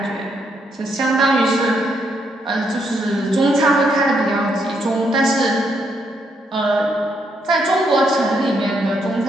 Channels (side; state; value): both; normal; correlation 0.76